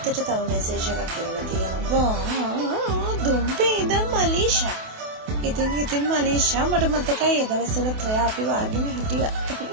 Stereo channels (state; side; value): late; left; 28 ms